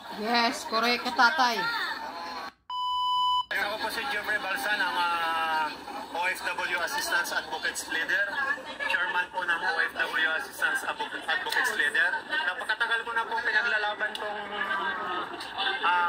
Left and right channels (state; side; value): identical; both; correlation 1.00